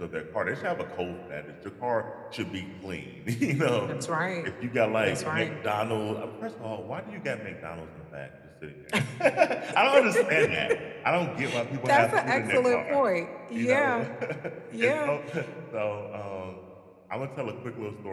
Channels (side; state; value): both; identical; correlation 1.00